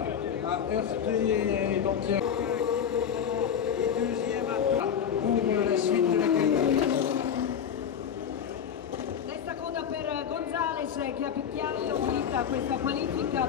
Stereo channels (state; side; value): quieter; right; 8.2 dB